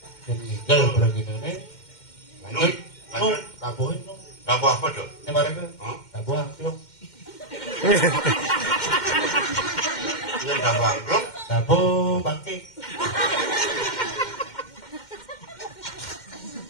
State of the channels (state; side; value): late; right; 2.1 ms